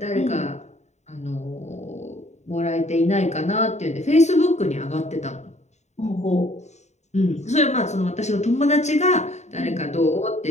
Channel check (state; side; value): late; right; 0.33 ms